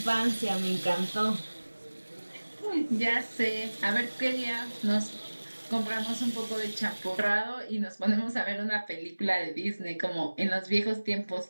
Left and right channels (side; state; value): both; inverted; correlation -1.00